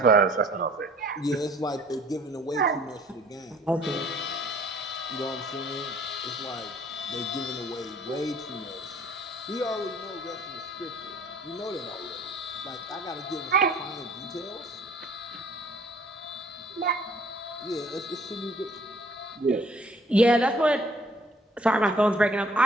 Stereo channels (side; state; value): both; normal; correlation 0.56